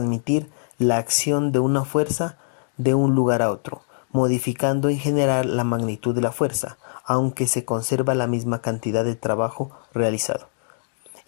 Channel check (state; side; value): silent; right; digital silence